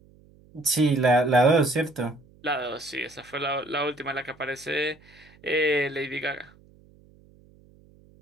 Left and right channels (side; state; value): right; noise; hum, 27 dB below the sound